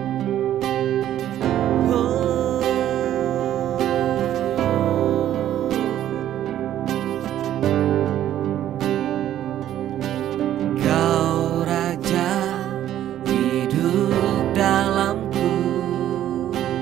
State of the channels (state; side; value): quieter; left; 11.9 dB